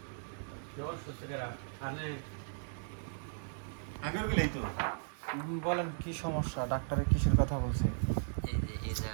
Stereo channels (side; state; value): left; silent; 53 dB below the other